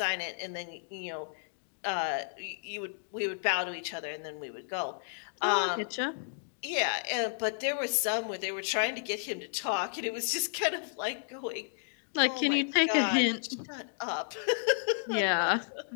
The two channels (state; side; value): silent; right; digital silence